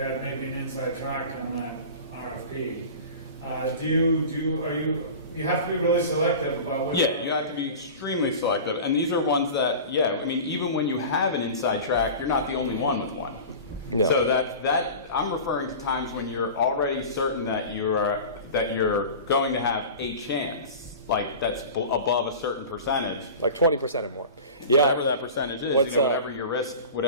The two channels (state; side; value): inverted; both; correlation -0.35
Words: maybe an inside track on that RFP. You have to be really selective about what. Yeah, you have to be extremely selective, and these are ones that, I mean, even when you have an inside track, you're not the only one with one. No. So that I'm referring to times when you're already certain that you're going to have a chance. Like that's above a certain percentage, like 20% or more. Yeah, whatever that percentage is. Whatever your risk.